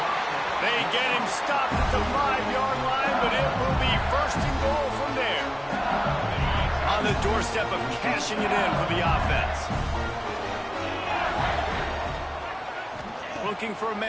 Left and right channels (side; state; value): both; identical; correlation 1.00